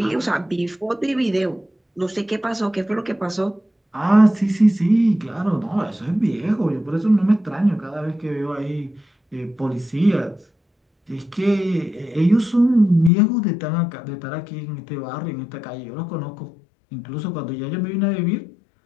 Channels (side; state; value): right; drops out; at 13.1 s